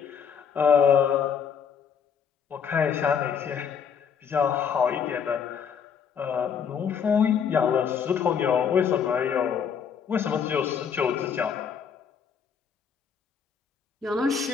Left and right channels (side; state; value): right; quieter; 7.1 dB